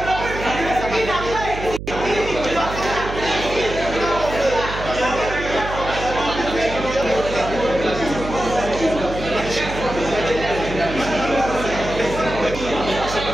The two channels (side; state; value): right; noise; hum, 8 dB below the sound